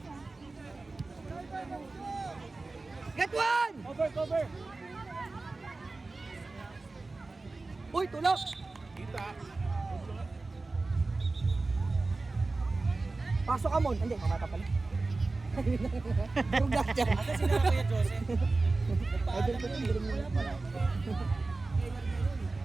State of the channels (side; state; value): left; quieter; 3.5 dB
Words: Get one! Cover! Uy, tulak! Pasok ka mon. Hindi, mamata pala. Durog dyan. Asa sila Kuya Joseph? Idol ko yun.